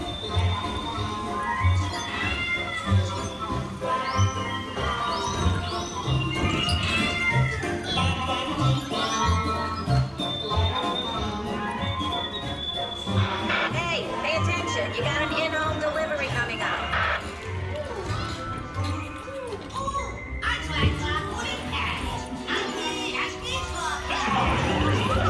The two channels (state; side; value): identical; both; correlation 1.00